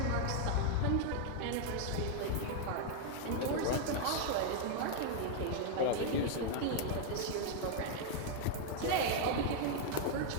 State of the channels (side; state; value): both; different; correlation 0.00